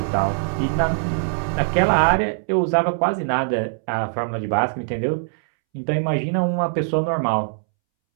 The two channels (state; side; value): silent; left; 64 dB below the other